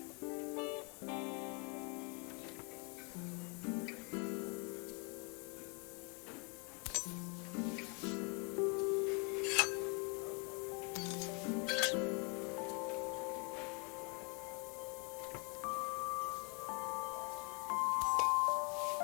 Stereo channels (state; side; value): quieter; right; 33.9 dB